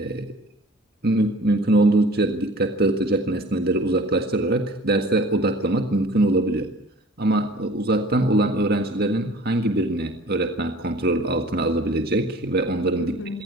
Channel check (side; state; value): both; normal; correlation 0.46